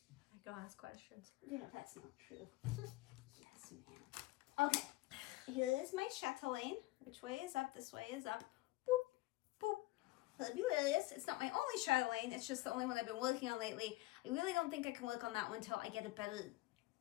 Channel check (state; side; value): quieter; right; 19.0 dB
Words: I go ask questions. Yeah, that's not true. Yes, ma'am. Okay. Here is my Chatelaine. Which way is up? This way is up. Boop, boop. Fabulous. It's not my only Chatelaine. It's just the only one I've been working on lately. I really don't think I can work on that one until I get a better